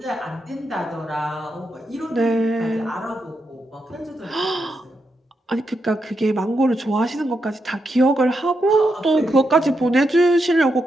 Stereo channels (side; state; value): both; normal; correlation 0.84